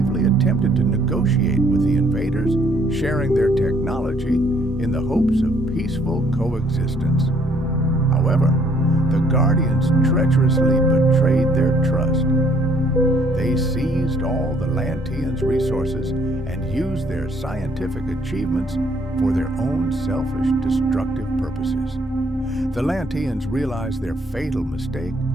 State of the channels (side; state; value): both; normal; correlation 0.64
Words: attempted to negotiate with the invaders, sharing their technology in the hopes of peaceful coexistence. However, the Guardians treacherously betrayed their trust. They seized all the Lanteans' resources and used their scientific achievements for their own selfish, destructive purposes. The Lanteans realized their fatal mistake